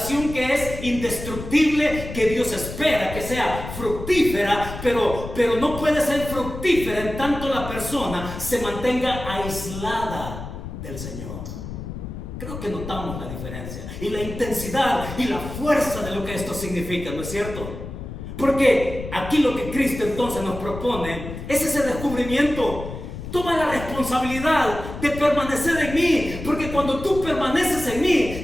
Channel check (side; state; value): left; noise; rumble, 9 dB below the sound